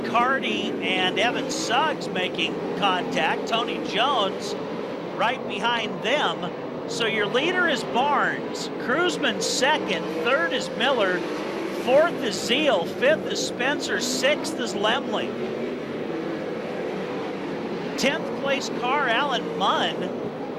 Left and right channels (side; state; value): both; identical; correlation 1.00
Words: Carty and Evan Suggs making contact. Tony Jones right behind them. So your leader is Barnes. Cruzman second. Third is Miller. Fourth is Zeal. Fifth is Spencer. Sixth is Lemley. 10th place car, Alan Munn.